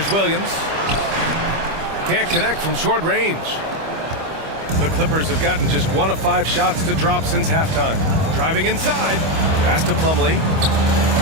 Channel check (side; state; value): left; late; 25 ms